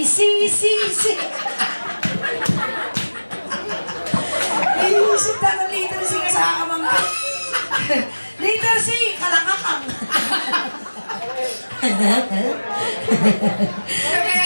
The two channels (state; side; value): inverted; both; correlation -1.00